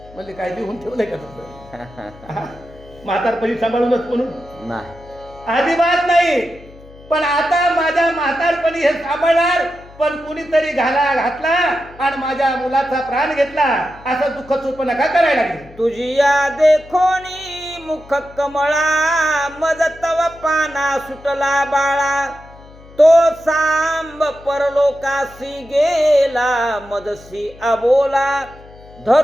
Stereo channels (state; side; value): noise; left; hum, 21 dB below the sound